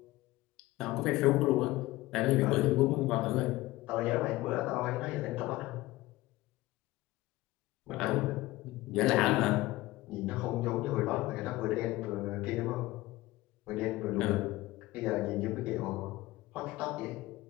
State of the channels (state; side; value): quieter; right; 18.6 dB